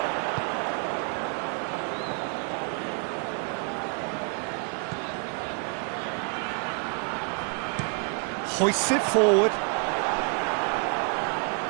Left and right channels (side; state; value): left; quieter; 39.9 dB